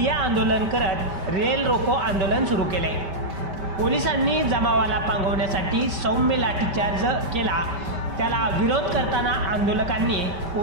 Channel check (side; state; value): left; late; 5.1 ms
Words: आंदोलन करत रेल रोको आंदोलन सुरू केले। पोलिसांनी जमावाला पांगवण्यासाठी सौम्य लाठीचार्ज केला। त्याला विरोध करताना आंदोलकांनी